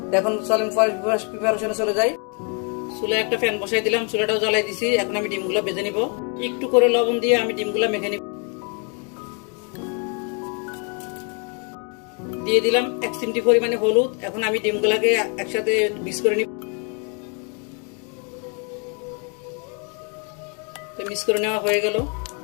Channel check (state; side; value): quieter; right; 36.6 dB